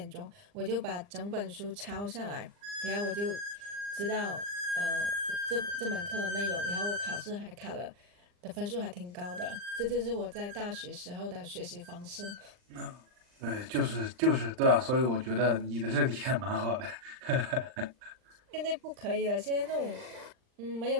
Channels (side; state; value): left; late; 39 ms